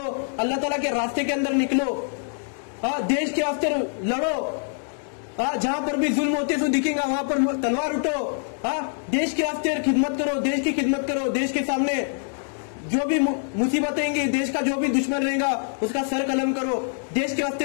अल्लाह ताला के रास्ते के अंदर निकलो। देश के वास्ते लड़ो। जहां पर भी जुल्म होते तो दिखेगा वहां पर तलवार उठो। देश के वास्ते खिदमत करो, देश की खिदमत करो। देश के सामने जो भी मुसीबतें आएंगी, देश का जो भी दुश्मन रहेगा उसका सर कलम करो। देश के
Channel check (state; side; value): silent; right; 62 dB below the other